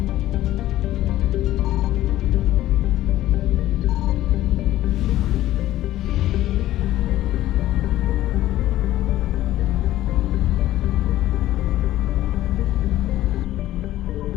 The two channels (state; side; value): quieter; right; 14.4 dB